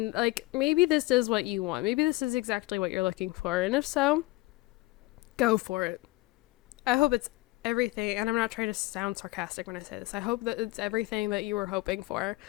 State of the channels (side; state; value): right; quieter; 21.1 dB